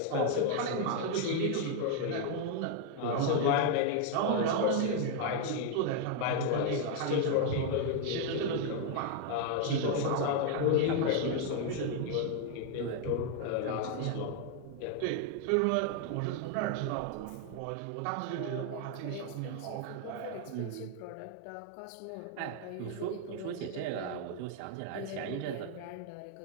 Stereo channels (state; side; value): different; both; correlation 0.01